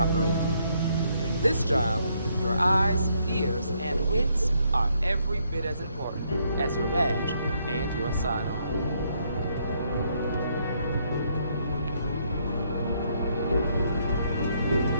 In this job, your eyes, ears, and wits are every bit as important as your badge and your sidearm.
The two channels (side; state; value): both; inverted; correlation -0.72